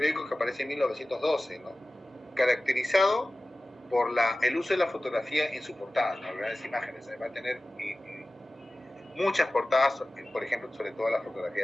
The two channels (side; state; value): both; normal; correlation 0.96